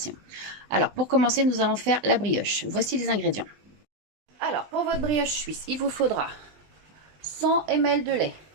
Alors pour commencer nous allons faire la brioche. Voici les ingrédients. Alors pour votre brioche suisse il vous faudra 100 ml de lait,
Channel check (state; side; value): late; left; 20 ms